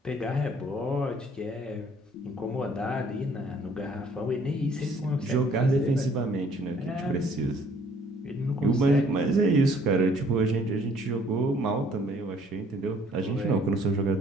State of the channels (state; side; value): normal; both; correlation 0.59